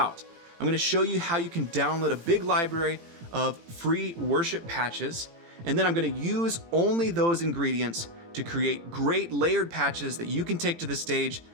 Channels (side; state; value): left; late; 18 ms